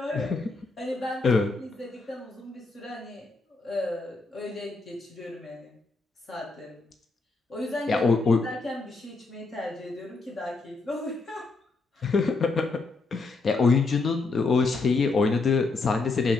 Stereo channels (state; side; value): quieter; right; 3.7 dB